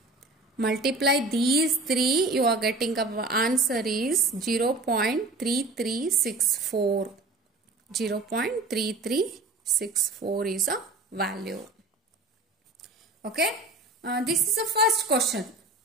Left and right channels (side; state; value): left; quieter; 3.1 dB